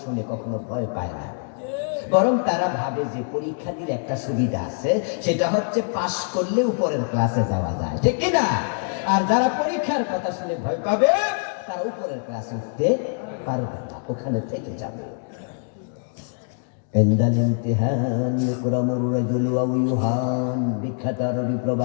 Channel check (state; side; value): silent; right; 63 dB below the other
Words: শুনে কখনো ভয় পায় না, বরং তারা ভাবে যে পরীক্ষা দিলে একটা সুবিধা আছে, সেটা হচ্ছে পাশ করলে উপরের ক্লাসে যাওয়া যায়, ঠিক কিনা? আর যারা পরীক্ষার কথা শুনে ভয় পাবে তারা উপরের ক্লাসে উঠতে পারবে না, ওখানে থেকে যাবে। ইনদাল ইমতিহান ইকরামুর রাজুল ওয়া ইউহান, বিখ্যাত আরবি